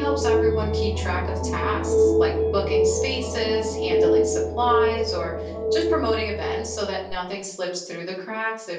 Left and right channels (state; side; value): identical; both; correlation 1.00